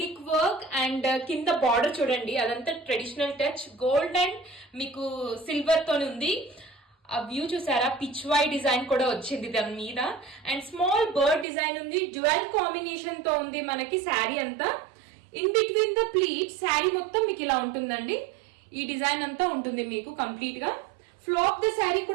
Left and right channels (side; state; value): left; drops out; at 11.5 s